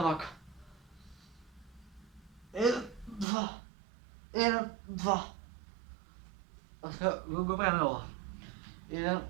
вака. 1, 2, 1, 2. А сега го правиме ова. 1,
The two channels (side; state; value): left; drops out; at 3.2 s